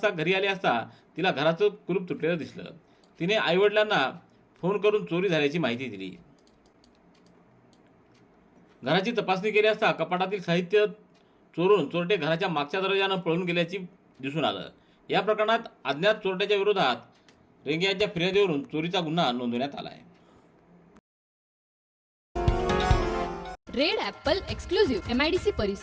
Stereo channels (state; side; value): identical; both; correlation 1.00